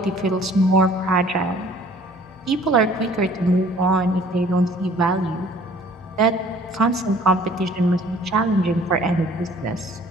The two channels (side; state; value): both; normal; correlation 0.54